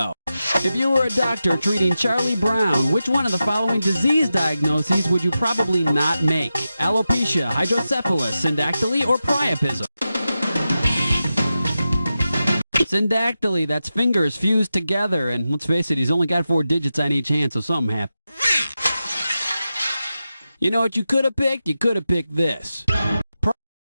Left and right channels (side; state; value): both; inverted; correlation -0.91